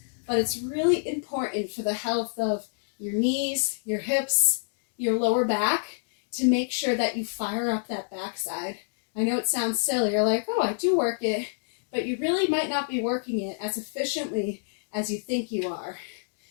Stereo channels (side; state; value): right; silent; digital silence